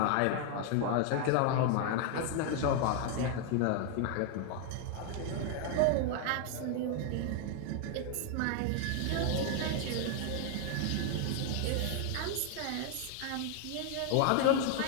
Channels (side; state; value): both; different; correlation 0.00